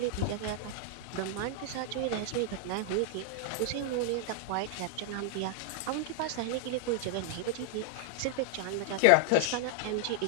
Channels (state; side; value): different; both; correlation 0.00